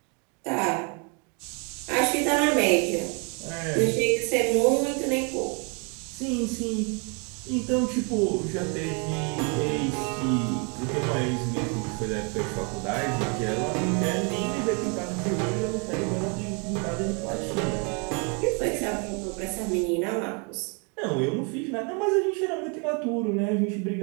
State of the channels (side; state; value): left; quieter; 34.8 dB